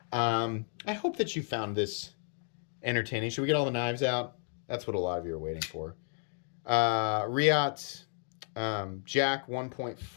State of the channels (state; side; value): silent; right; 56 dB below the other